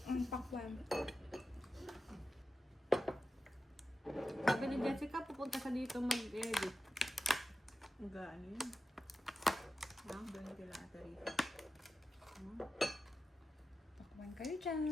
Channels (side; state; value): both; normal; correlation 0.92